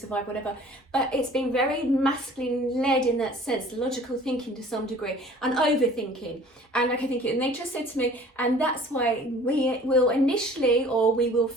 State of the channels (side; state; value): both; normal; correlation 0.49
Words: whatever. But it's been very masculine led in that sense, logical thinking to some degree, and overthinking. And okay, thank you. And they just said to me, and that's why we will initially, or we will